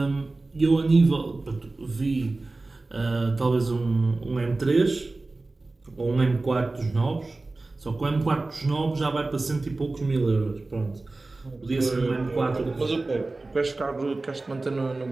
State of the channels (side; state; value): left; quieter; 3.3 dB